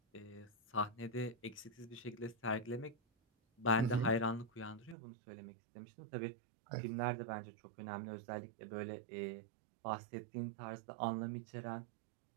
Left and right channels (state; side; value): drops out; left; at 5.0 s